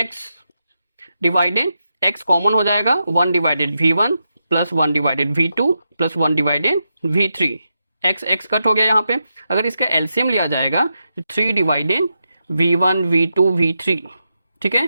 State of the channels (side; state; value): both; inverted; correlation -0.86